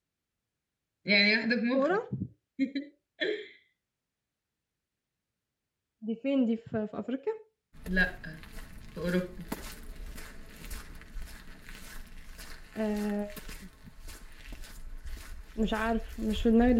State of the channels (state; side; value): identical; both; correlation 1.00